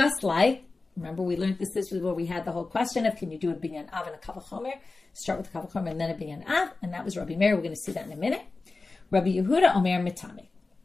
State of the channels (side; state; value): right; quieter; 3.7 dB